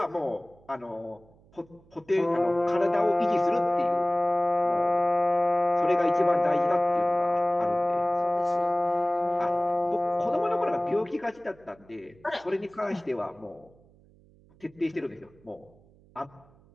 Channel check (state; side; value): noise; right; hum, 28 dB below the sound